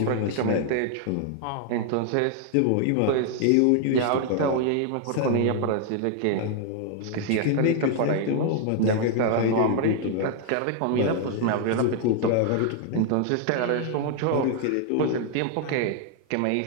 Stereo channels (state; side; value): different; both; correlation 0.00